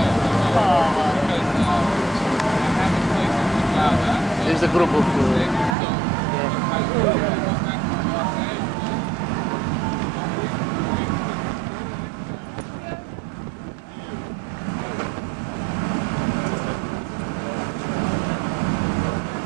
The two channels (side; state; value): left; drops out; at 5.8 s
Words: Is the group of...